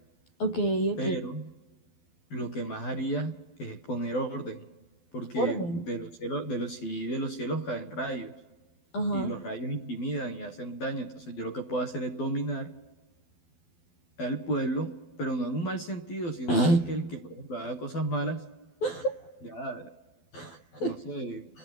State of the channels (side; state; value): right; late; 12 ms